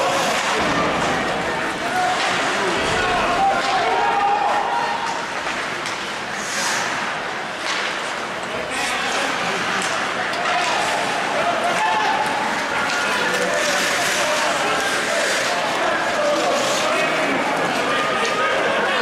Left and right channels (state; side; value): identical; both; correlation 1.00